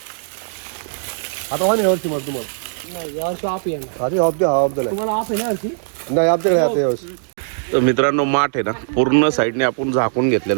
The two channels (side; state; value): left; silent; digital silence